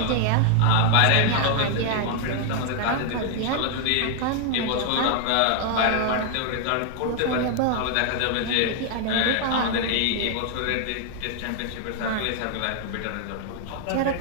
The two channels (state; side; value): different; both; correlation 0.00